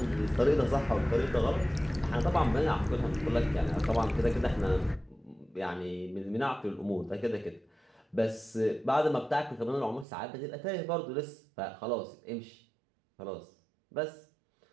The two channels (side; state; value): left; drops out; at 10.1 s